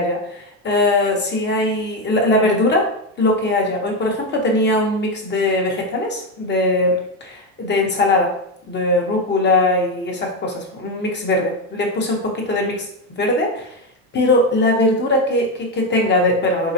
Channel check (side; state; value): both; normal; correlation 0.10